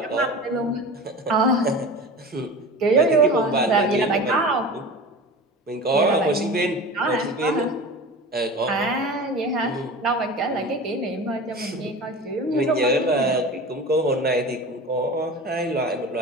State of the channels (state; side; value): normal; both; correlation 0.33